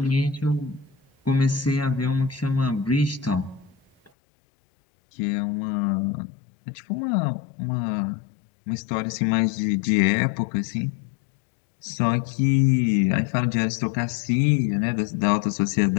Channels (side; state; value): right; drops out; at 4.1 s